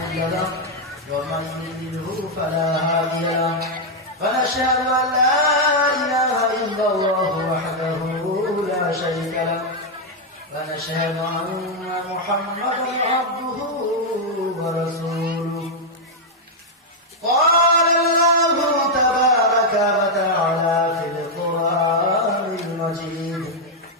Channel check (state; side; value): normal; both; correlation -0.01